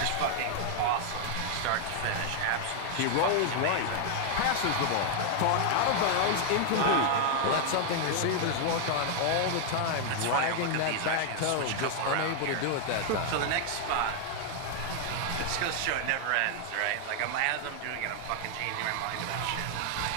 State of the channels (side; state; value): both; different; correlation 0.00